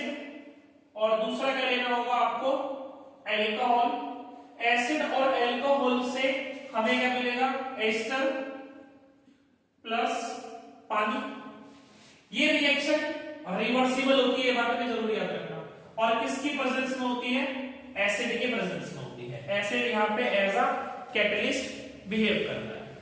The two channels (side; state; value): both; identical; correlation 1.00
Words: और दूसरा क्या लेना होगा आपको? एल्कोहल। एसिड और एल्कोहल से हमें क्या मिलेगा? एस्टर प्लस पानी। ये रिएक्शन रिवर्सिबल होती है, बात में जरूर याद रखना। और किसकी प्रेजेंस में होती है? एसिड के प्रेजेंस में होती है। एसिड यहाँ पे एज अ कैटलिस्ट बिहेव करता है।